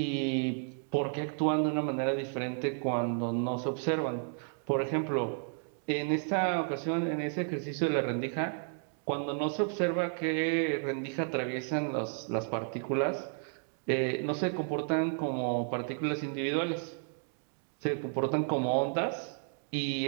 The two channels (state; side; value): silent; left; 55 dB below the other